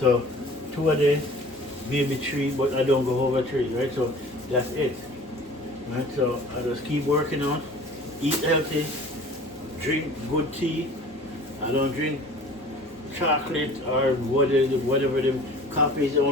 2 a day, maybe 3, but I don't go over 3, right? So that's it. Right? So I just keep working on, eat healthy, drink good tea. I don't drink chocolate or whatever the coffee is the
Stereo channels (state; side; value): normal; both; correlation 0.45